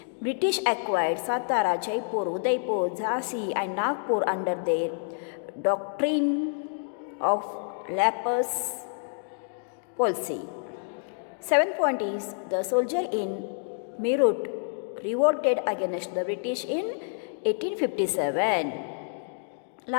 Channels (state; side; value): silent; right; digital silence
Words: British acquired Satara, Jaipur, Udaipur, Jhansi and Nagpur under their doctrine of lapis policy. 7th point is the soldier in Meerut revolted against the British in 1857.